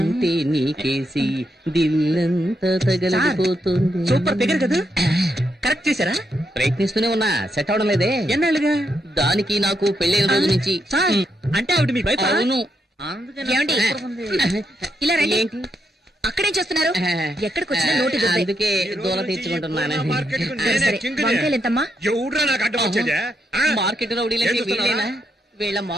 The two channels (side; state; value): both; normal; correlation 0.80